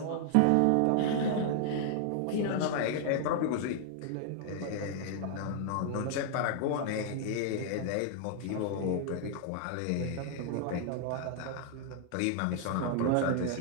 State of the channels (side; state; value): both; different; correlation 0.00